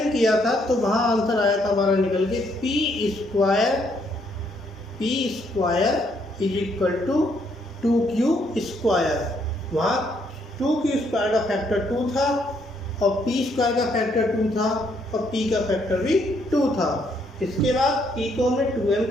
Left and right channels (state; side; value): normal; both; correlation 0.71